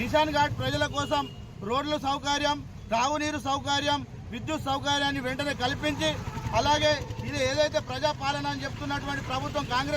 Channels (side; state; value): both; identical; correlation 1.00